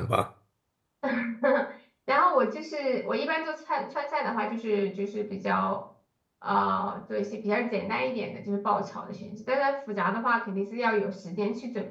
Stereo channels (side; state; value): both; identical; correlation 1.00